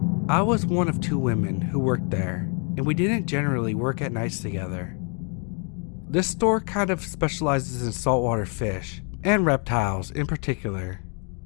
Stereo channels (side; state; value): right; quieter; 38.3 dB